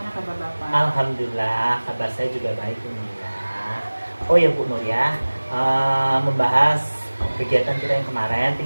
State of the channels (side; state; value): both; inverted; correlation -1.00